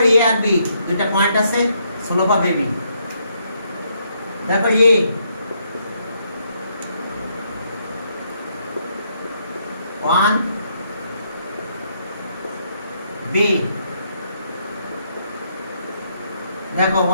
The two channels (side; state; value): both; inverted; correlation -0.74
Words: এ আর বি দুটো পয়েন্ট আছে, স্লোপ অফ এবি দেখো এ ওয়ান বি দেখো